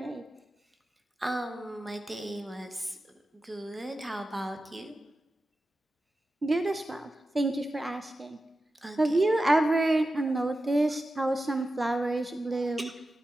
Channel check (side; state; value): both; normal; correlation 0.92